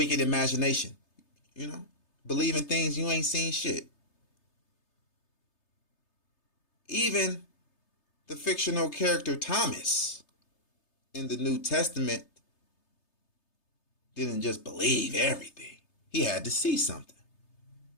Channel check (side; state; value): right; late; 3.3 ms